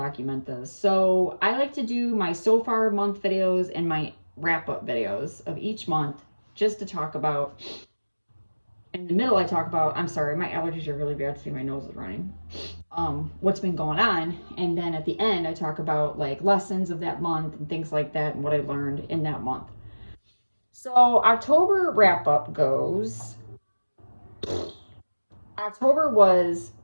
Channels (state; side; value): inverted; both; correlation -1.00